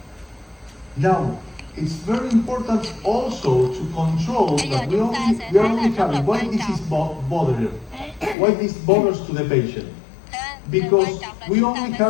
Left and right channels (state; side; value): drops out; right; at 8.3 s